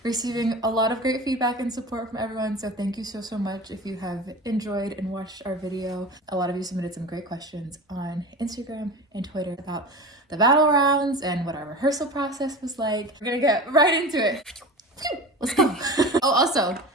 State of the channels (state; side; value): normal; both; correlation 0.33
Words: receiving a lot of great feedback and support from everyone, so thank you so much if you have enjoyed and watched our video. A lot of you submitted some great questions on Instagram and Twitter about the battle rounds and what our rehearsal process was like. We're gonna get right into it. Let's go. Oh, also,